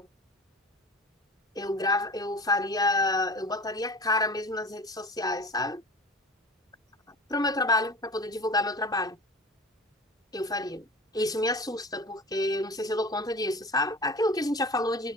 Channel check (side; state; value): both; normal; correlation 0.35